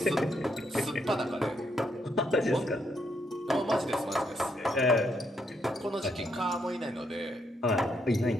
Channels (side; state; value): both; normal; correlation 0.76